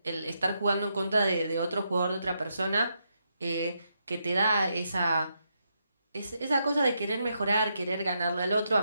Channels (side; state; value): both; inverted; correlation -0.81